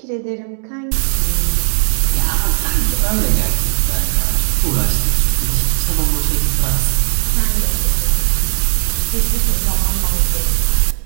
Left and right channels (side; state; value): left; silent; digital silence